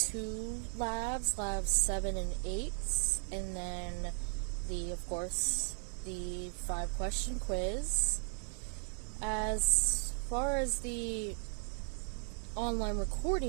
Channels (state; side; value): silent; left; 54 dB below the other